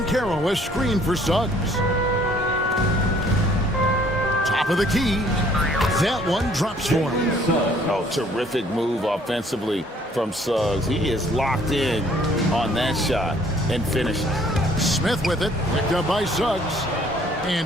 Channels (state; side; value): normal; both; correlation 0.60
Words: has screened for Suggs. Top of the key. That one drops for him. Oh, terrific move offensively from Suggs. He is locked in on that shot and finishes. Smith with it. Picked up by Suggs. And